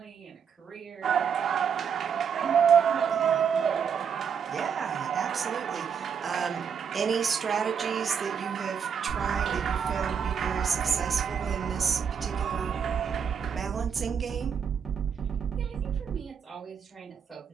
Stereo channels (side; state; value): left; quieter; 7.1 dB